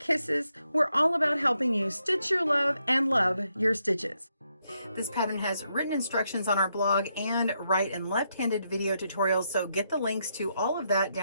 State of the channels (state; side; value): inverted; both; correlation -0.80